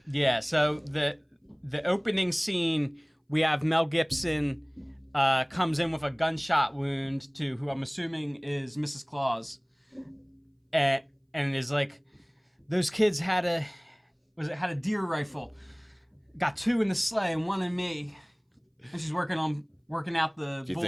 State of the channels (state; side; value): identical; both; correlation 1.00